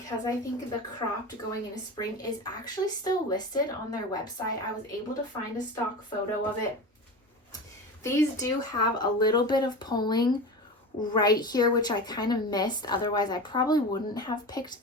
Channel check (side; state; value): both; normal; correlation 0.28